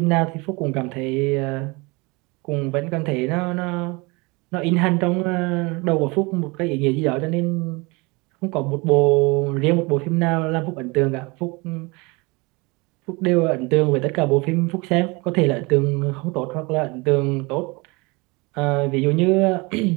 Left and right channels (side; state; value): left; quieter; 26.3 dB